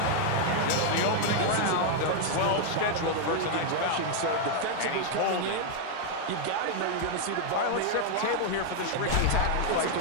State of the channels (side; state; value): both; different; correlation 0.00